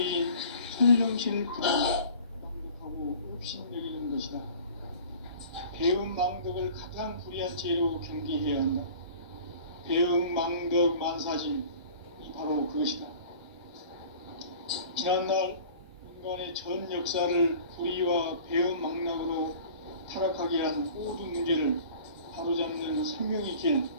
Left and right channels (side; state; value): both; inverted; correlation -0.45